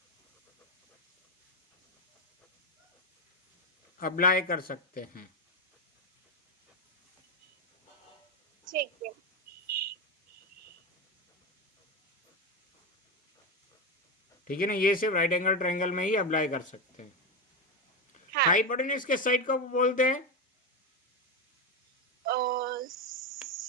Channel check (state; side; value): normal; both; correlation 0.13